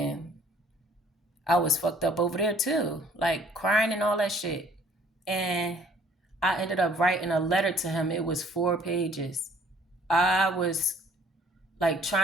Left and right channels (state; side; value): normal; both; correlation 0.58